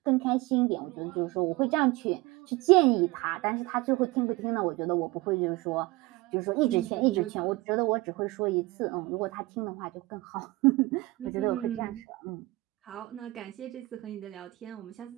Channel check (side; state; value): left; quieter; 21.2 dB